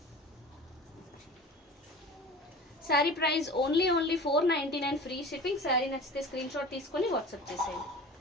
Saree price only 499 free shipping. Sari నచ్చితే స్క్రీన్ షాట్ తీసుకొని వాట్సాప్ చేసేయండి.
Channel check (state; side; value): normal; both; correlation 0.38